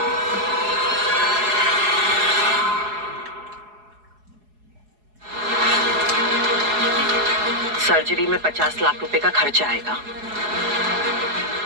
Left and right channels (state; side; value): late; left; 4.8 ms